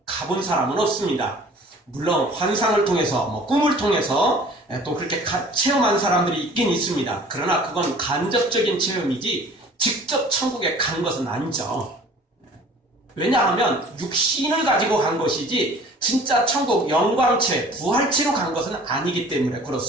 가본 사람은 없습니다. 물론 환상을 통해서 꿈을 통해서 또 그렇게 체험한 사람들이 있긴 있습니다. 그러나 그건 간접적인 체험이지 직접 천국에 간 것은 아니죠. 왜냐하면 육신을 가지고 간 것이지 진짜 천국 영광체, 부활체로 간 것은 아니기 때문에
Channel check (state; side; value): normal; both; correlation 0.48